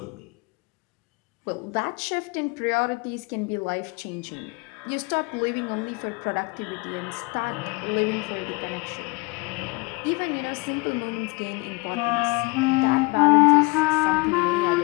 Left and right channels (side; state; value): right; quieter; 26.0 dB